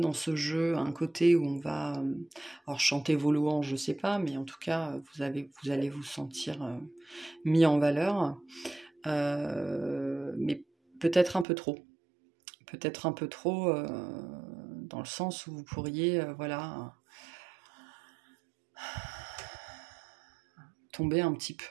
ce jeu un côté où on va alors chanter vos louanges, je ne sais pas, mais en tout cas, vous allez vous sentir mis en valeur, mais peut-être un peu trop. Peut-être un peu trop dans le sens où vous pourriez voilà, tomber un petit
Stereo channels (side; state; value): left; drops out; at 11.5 s